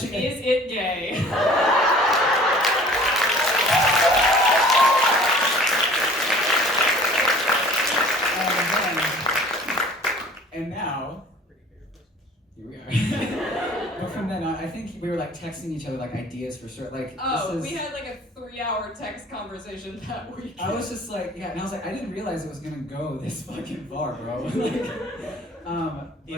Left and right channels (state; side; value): normal; both; correlation 0.49